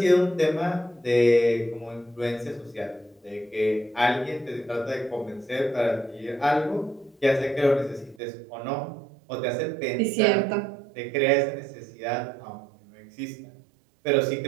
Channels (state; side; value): drops out; left; at 8.2 s